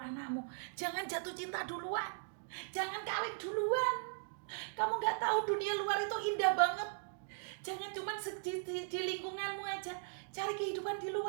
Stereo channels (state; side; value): silent; left; digital silence